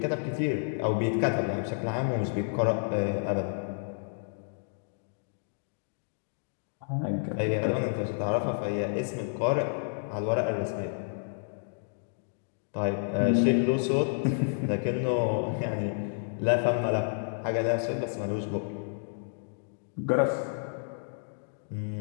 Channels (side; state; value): right; silent; digital silence